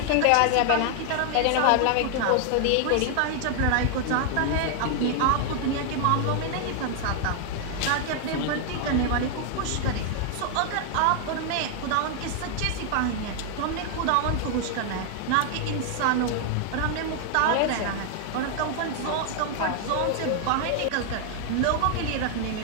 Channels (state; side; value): different; both; correlation 0.00